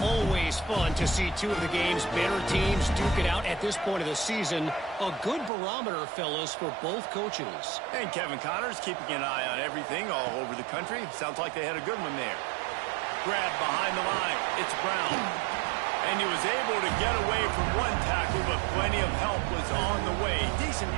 fun to see 2 of the game's better teams duke it out at this point of the season. A good barometer, fellas, for both coaches. And Kevin Connors keeping an eye on everything all over the country. Sounds like they had a good one there. Grab behind the line. It's Brown. And he was able to get away from one tackle, but plenty of help was on the way. Decent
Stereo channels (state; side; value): drops out; left; at 5.5 s